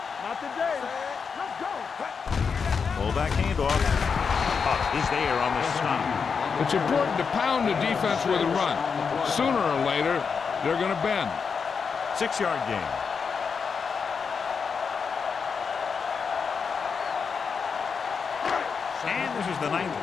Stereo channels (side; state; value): right; quieter; 5.8 dB